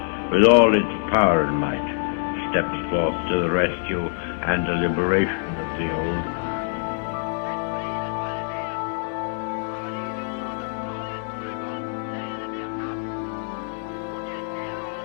with all its power and might, steps forth to the rescue and the liberation of the old.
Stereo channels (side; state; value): right; silent; digital silence